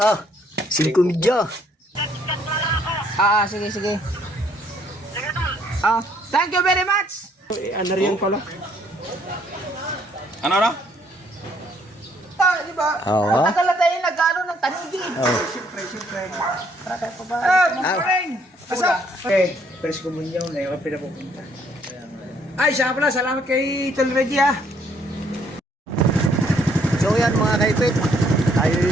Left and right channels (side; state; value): both; normal; correlation 0.66